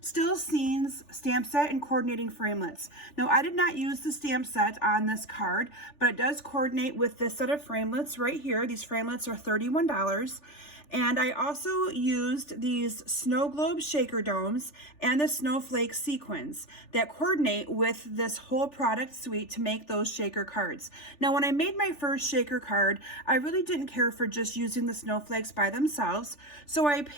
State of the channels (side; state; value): right; late; 3.4 ms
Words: Scenes stamp set and coordinating framelits. Now, I did not use the stamp set on this card, but it does coordinate with this set of framelits right here. These framelits are $31. And I also used these snow globe shaker domes and the snowflake sequins that coordinate with this whole product suite to make those shaker cards. Now, when I made my first shaker card, I really didn't care for just using the snowflakes by themselves. So I